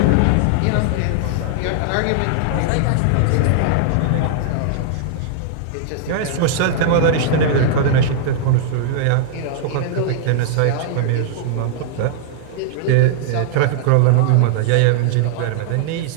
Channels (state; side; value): different; both; correlation -0.01